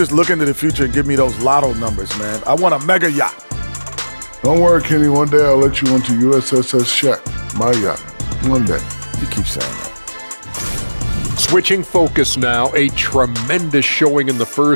look into the future and give me those lotto numbers, man? I want a mega yacht. Don't worry, Kenny. One day I'll let you onto USSS Shaq, my yacht. One day. You keep saying that. Switching focus now, a tremendous showing in the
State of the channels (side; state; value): both; inverted; correlation -1.00